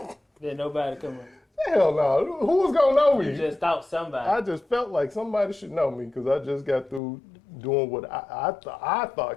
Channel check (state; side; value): drops out; right; at 7.0 s